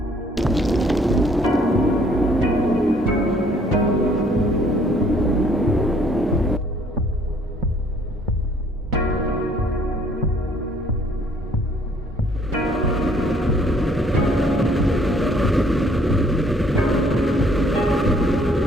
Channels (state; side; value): normal; both; correlation 0.61